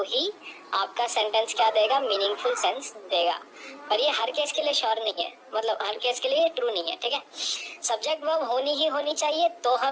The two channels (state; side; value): identical; both; correlation 1.00